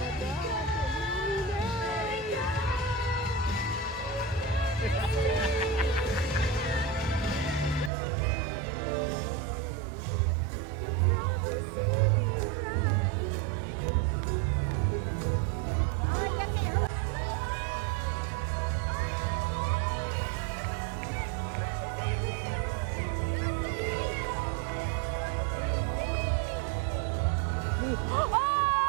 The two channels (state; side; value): drops out; left; at 7.9 s